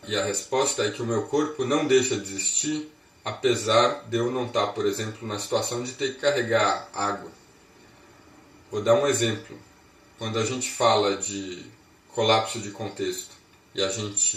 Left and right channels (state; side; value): identical; both; correlation 1.00